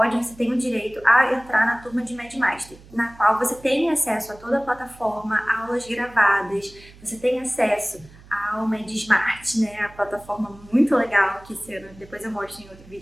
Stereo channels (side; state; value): right; noise; hum, 22 dB below the sound